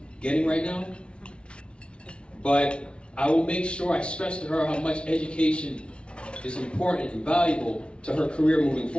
getting right now, but I will make sure I stress to her how much education is important and valuable to her career moving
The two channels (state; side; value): late; right; 0.058 ms